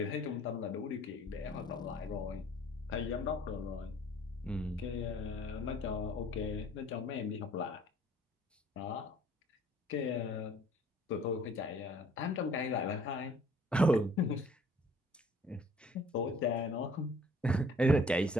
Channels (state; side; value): normal; both; correlation 0.56